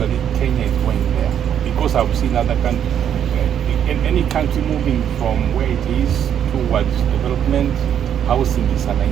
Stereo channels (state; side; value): quieter; left; 9.3 dB